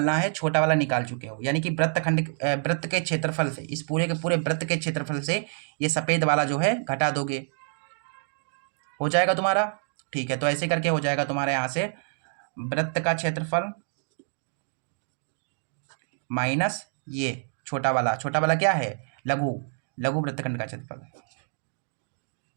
है, छोटा वाला निकाल चुके हो, यानी कि वृत्त के क्षेत्रफल से, इस पूरे के पूरे वृत्त के क्षेत्रफल से ये सफ़ेद वाला जो है घटा दोगे, हो जाएगा तुम्हारा। ठीक है, तो ऐसे करके हो जाएगा तुम्हारे यहाँ से वृत्त का क्षेत्रफल माइनस ये छोटा वाला क्या है, लघु वृत्तखंड का क्षेत्रफल।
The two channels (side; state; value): left; silent; 57 dB below the other